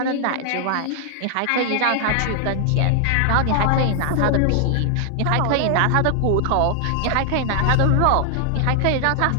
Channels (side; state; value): both; different; correlation 0.00